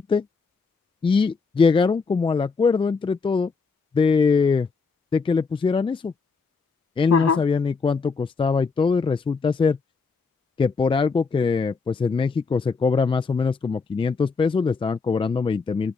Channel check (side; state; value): right; quieter; 4.8 dB